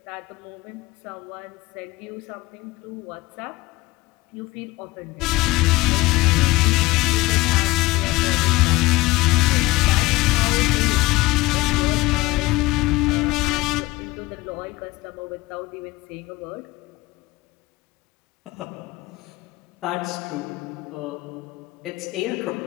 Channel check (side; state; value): right; quieter; 20.2 dB